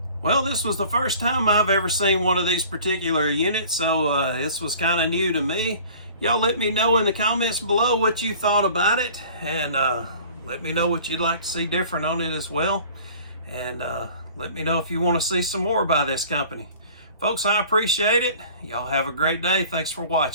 Well, this was the first time I've ever seen one of these particular units, so this was kind of new to me. Y'all let me know in the comments below what you thought about it, and let me know what you'd like to see different on it as well. And let me know if you want to see some more by this company. Folks, I appreciate it. Y'all have a great day. Thanks for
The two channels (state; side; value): inverted; both; correlation -0.47